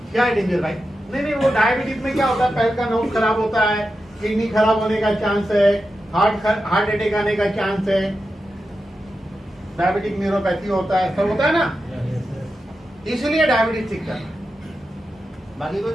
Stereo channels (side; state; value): both; normal; correlation 0.90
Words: क्या है डेंजर भाई? नहीं वो डायबिटीज में क्या होता है, पैर का नोज खराब होता है, किडनी खराब होने का चांस है, हार्ट अटैक आने का चांस है, डायबिटिक न्यूरोपैथी होता है, सब होता है ना, इसलिए डायबिटीज ठीक करना। बाकी कोई